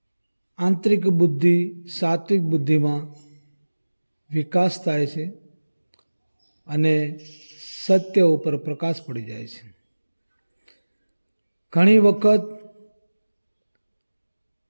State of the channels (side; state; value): both; inverted; correlation -1.00